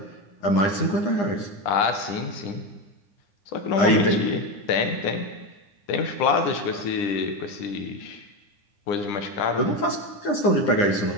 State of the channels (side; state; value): right; late; 9.9 ms